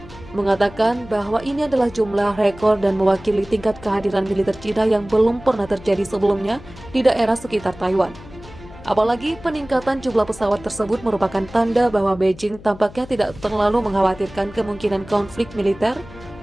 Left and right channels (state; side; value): noise; left; hum, 18 dB below the sound